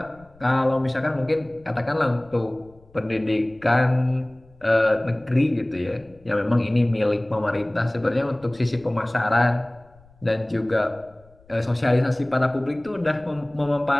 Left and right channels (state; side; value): noise; left; rumble, 27 dB below the sound